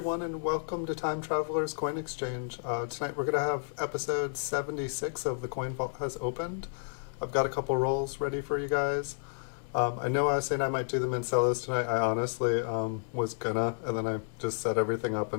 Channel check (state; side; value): silent; right; digital silence